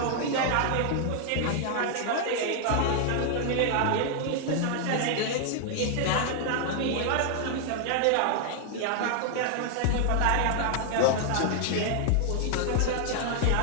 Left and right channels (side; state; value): both; different; correlation 0.00